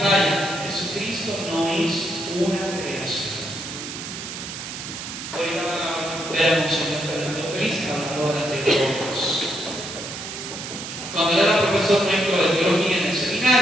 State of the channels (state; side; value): noise; right; hiss, 8 dB below the sound